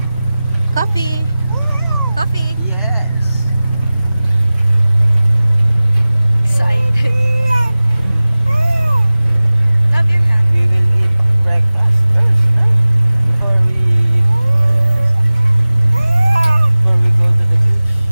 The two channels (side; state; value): both; inverted; correlation -0.98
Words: Coffee. Coffee. Yes. Excited. Love your hand. We will eat breakfast first, no? Before we go to the beach.